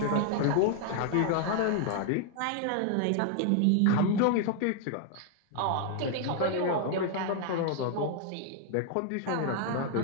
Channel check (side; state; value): both; different; correlation 0.00